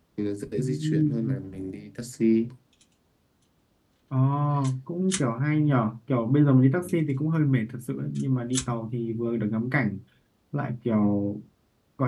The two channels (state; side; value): identical; both; correlation 1.00